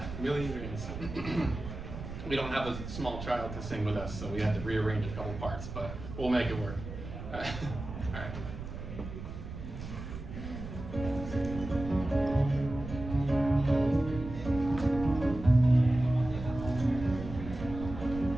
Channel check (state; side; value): noise; right; rumble, 9 dB below the sound